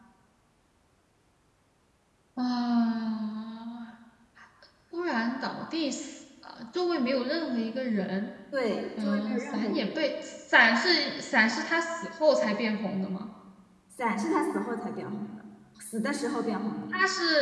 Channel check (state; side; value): identical; both; correlation 1.00